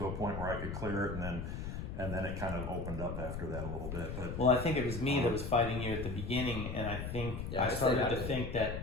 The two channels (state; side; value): noise; left; rumble, 5 dB below the sound